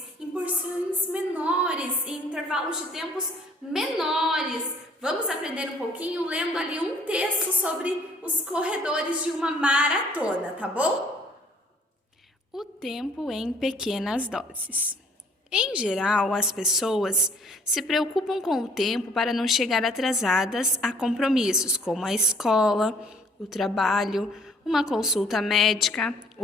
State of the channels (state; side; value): normal; both; correlation 0.59